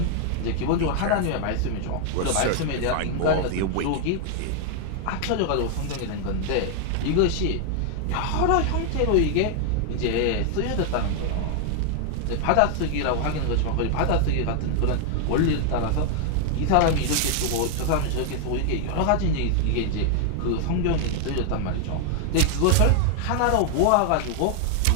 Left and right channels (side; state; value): both; different; correlation 0.00